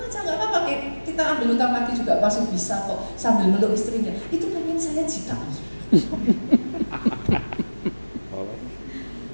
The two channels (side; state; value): both; inverted; correlation -1.00